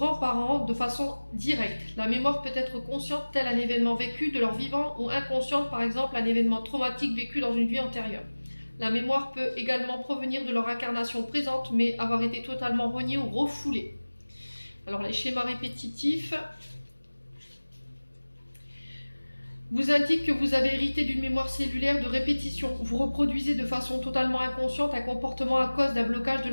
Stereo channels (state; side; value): inverted; both; correlation -1.00